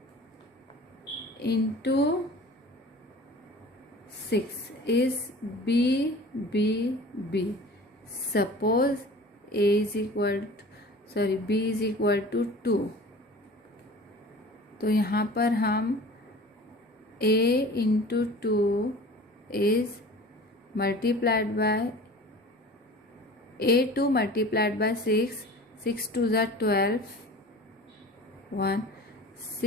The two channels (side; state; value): both; normal; correlation 0.41